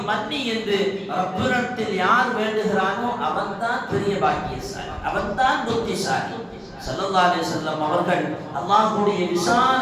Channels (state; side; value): identical; both; correlation 1.00